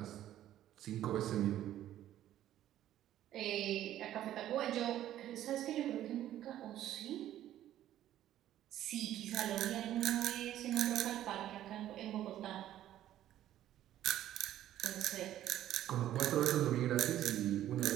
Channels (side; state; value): left; quieter; 12.5 dB